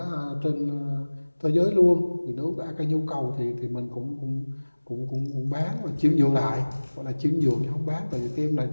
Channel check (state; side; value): inverted; both; correlation -1.00